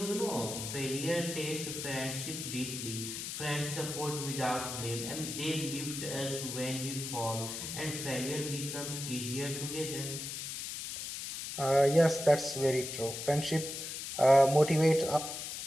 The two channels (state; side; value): noise; left; hiss, 6 dB below the sound